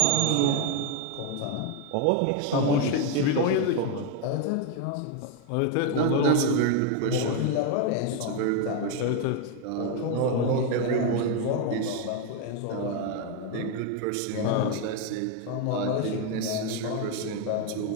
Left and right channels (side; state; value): both; different; correlation 0.01